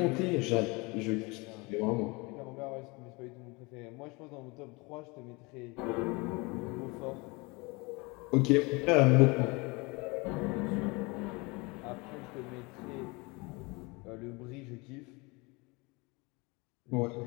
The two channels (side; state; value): right; quieter; 26.6 dB